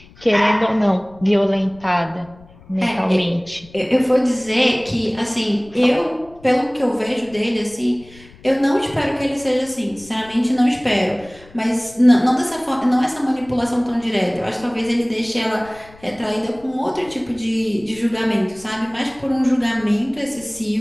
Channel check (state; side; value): noise; left; rumble, 24 dB below the sound